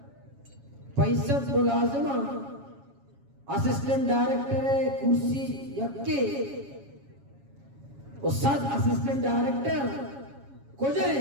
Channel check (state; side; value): late; left; 7.2 ms